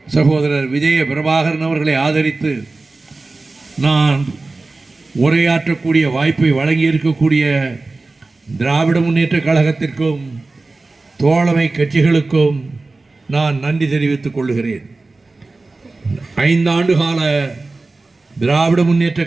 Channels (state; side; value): quieter; left; 3.4 dB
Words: சகோதரர் விஜய பிரபாகரன் அவர்களை ஆதரித்து நான் உரையாற்றக்கூடிய வாய்ப்பை வழங்கியிருக்கக்கூடிய திராவிட முன்னேற்ற கழகத்திற்கும் தோழமை கட்சிகளுக்கும் நான் நன்றி தெரிவித்துக் கொள்கிறேன். 5 ஆண்டு கால திராவிட முன்னேற்ற